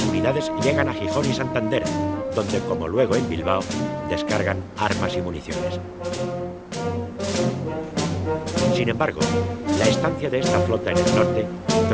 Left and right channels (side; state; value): both; identical; correlation 1.00